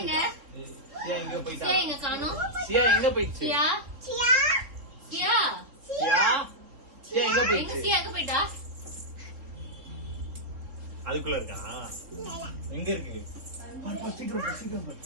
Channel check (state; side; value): late; left; 3.8 ms